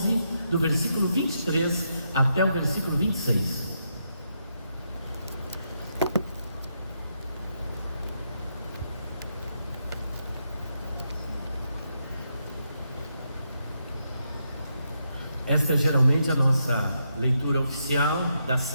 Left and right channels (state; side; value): inverted; both; correlation -0.81